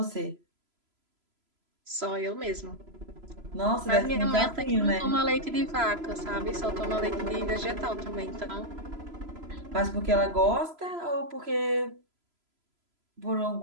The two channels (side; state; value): left; late; 3.0 ms